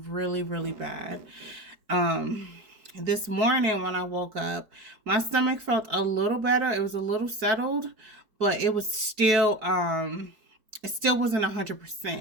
really, really bad. This morning when I woke up, my stomach felt a little better. It was a little settled, but it was still, it still wasn't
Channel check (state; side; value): late; left; 4.7 ms